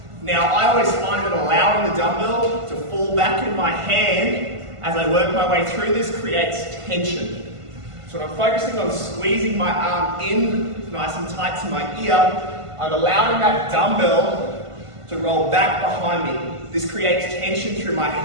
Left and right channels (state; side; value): late; left; 1.5 ms